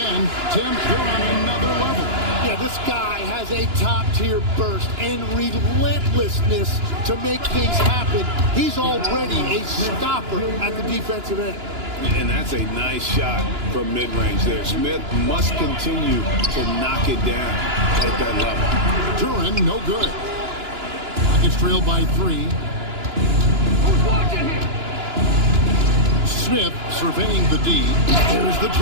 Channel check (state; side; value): late; left; 2.9 ms